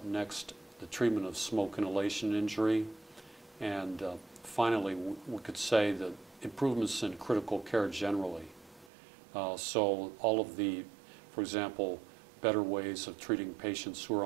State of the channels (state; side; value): drops out; left; at 8.9 s